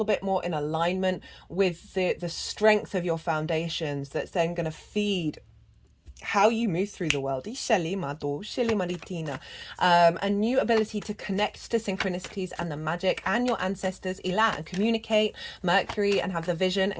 bit more in alignment with the strength of your foundations that's then going to feed how you move through the world. A new ability to connect to synchronicities and the magic and your ancestors, and communicate Mercury and have the vision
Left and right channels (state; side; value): identical; both; correlation 1.00